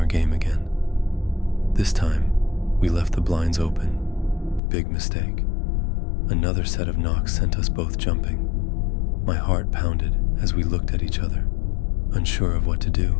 game again. This time, we left the blinds open. Big mistake. Another set of knocks sent us both jumping. My heart pounded as we looked at each other, unsure of what to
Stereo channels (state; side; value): drops out; right; at 4.6 s